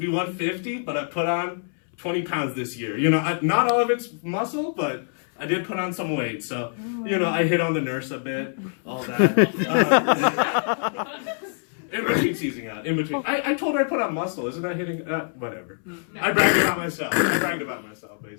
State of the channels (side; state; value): right; silent; 62 dB below the other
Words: 150, but I put on 20 pounds this year. You know, not all of it's muscle, but I did put on some weight. So, you know, I hit on the nurse a bit, all that. In between seizing out. I told her I put on muscle. Isn't that hitting? Whatever. No. I bragged about myself,